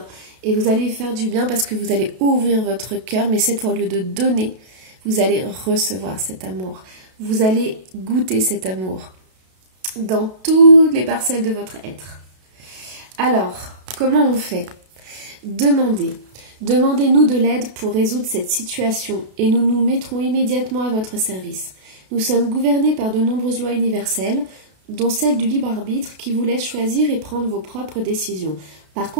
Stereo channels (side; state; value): left; late; 32 ms